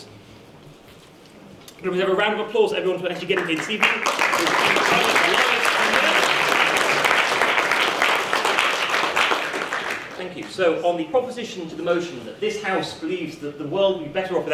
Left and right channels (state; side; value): identical; both; correlation 1.00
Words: Can we have a round of applause for everyone for actually getting here this evening? Thank you. So, on the proposition to the motion that this House believes that the world would be better off